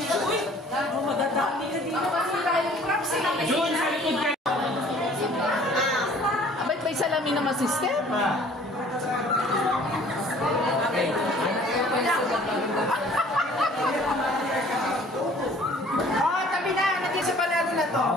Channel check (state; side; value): normal; both; correlation 0.53